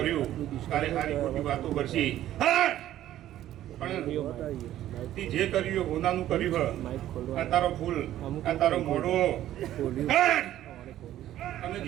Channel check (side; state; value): left; quieter; 13.0 dB